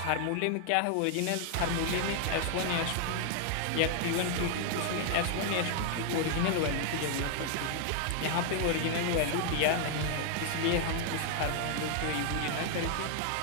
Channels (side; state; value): both; different; correlation 0.00